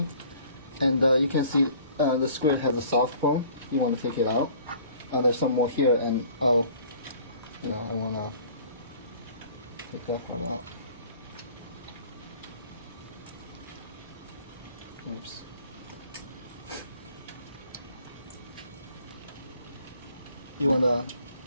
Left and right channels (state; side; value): inverted; both; correlation -0.52